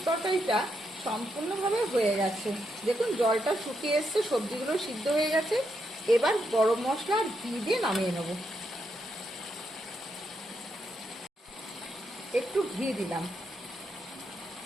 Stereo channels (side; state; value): both; normal; correlation 0.81